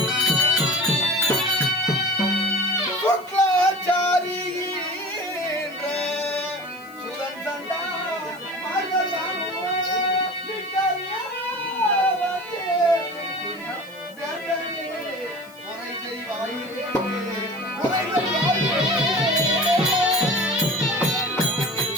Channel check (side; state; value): left; noise; hiss, 25 dB below the sound